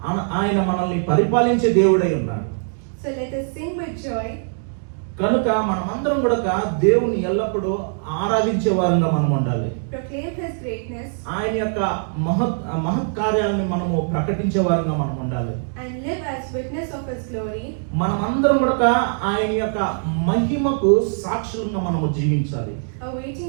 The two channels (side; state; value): left; silent; digital silence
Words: ఆయన మనల్ని పరిపాలించే దేవుడై ఉన్నాడు. So let us sing with joy. కనుక మనమందరం కూడా దేవుని ఎల్లప్పుడూ ఆరాధించే వారంగా మనం ఉండాలి. Proclaim his greatness. ఆయన యొక్క మహత్ కార్యాలను మనము ప్రకటించే వారంగా మనం ఉండాలి. And live as witness of his glory. మనమందరం కూడా ఆయన యొక్క మహిమకు సాక్షులుగా మనము జీవించాలి. Awaiting